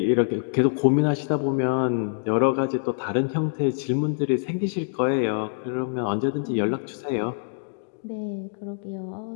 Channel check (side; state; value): right; silent; digital silence